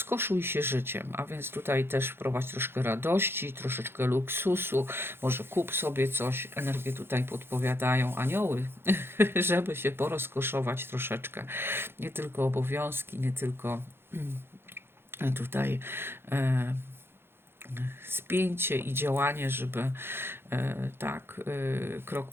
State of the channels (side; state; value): left; late; 0.11 ms